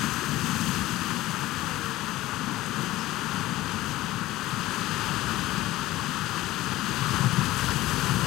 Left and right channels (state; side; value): quieter; right; 16.8 dB